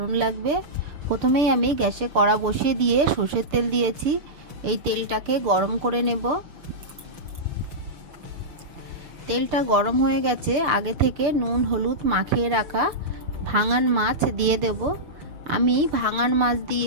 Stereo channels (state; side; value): late; left; 6.7 ms